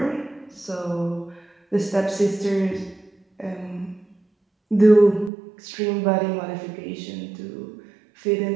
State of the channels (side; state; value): left; drops out; at 5.3 s